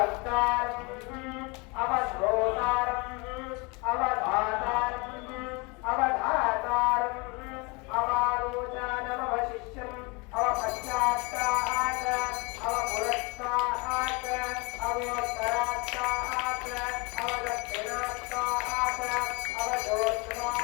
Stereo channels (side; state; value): right; quieter; 28.4 dB